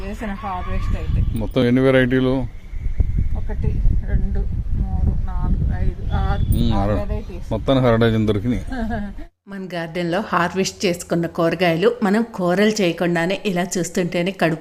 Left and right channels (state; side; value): identical; both; correlation 1.00